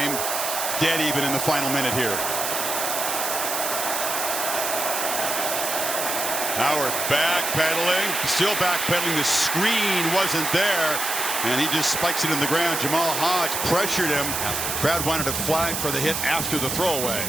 Dead even in the final minute here. Howard backpedaling. Still backpedaling. The screen wasn't there. And he just spikes it in the ground. Jamal Hodge pressured him. Crowd wanted a flag for the hit after the throwaway.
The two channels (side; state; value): right; noise; hiss, 2 dB below the sound